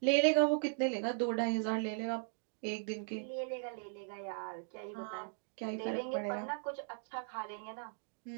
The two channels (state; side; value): silent; left; digital silence